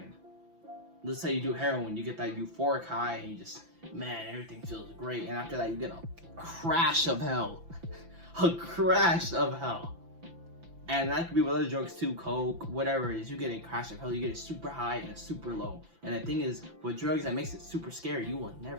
Let's say you do heroin, you get that euphoric high and you just, man, everything feels great. And after that, you get a crash of hell. A crash of hell. And that could be with other drugs too, coke, whatever it is. You get a crash of hell, you get a super high and a super low. And the thing is, with drugs, that makes it super scary. You will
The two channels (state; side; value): late; left; 5.9 ms